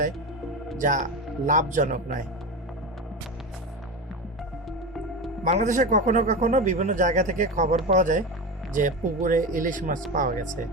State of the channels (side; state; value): both; normal; correlation 0.22